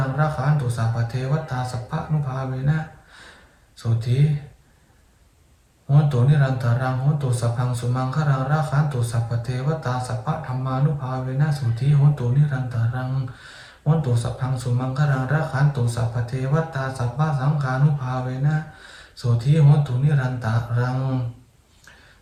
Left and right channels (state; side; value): identical; both; correlation 1.00